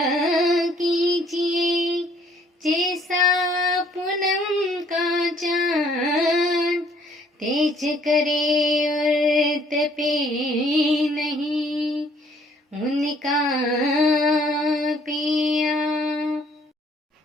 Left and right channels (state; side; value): normal; both; correlation 0.62